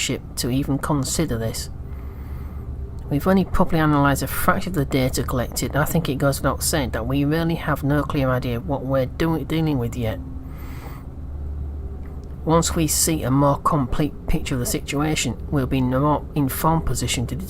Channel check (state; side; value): identical; both; correlation 1.00